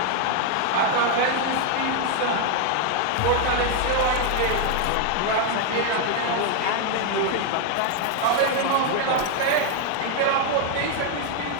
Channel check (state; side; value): different; both; correlation 0.00